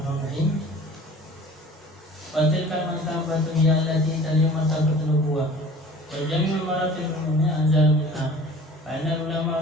Wa tilka martabatu hiya allati taliya martabatul nubuwah. Wa jami'ul maratil umumiyya anzal minha. Fa inna ulama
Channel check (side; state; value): both; normal; correlation 0.45